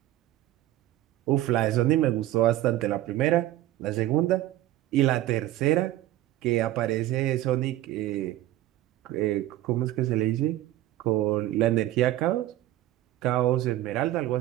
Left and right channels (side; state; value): left; quieter; 14.6 dB